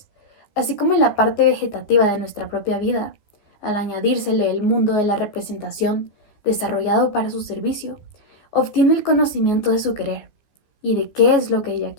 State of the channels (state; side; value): late; right; 14 ms